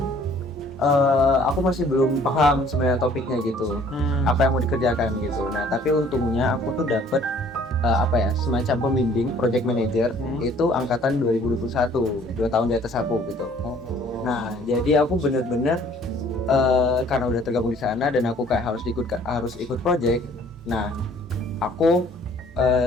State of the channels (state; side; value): normal; both; correlation 0.56